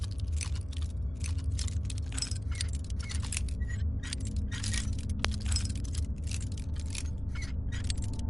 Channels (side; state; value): left; noise; hum, 18 dB below the sound